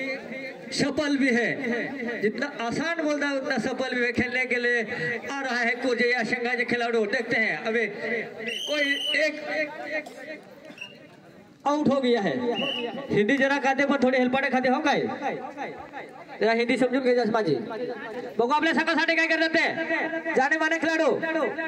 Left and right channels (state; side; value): identical; both; correlation 1.00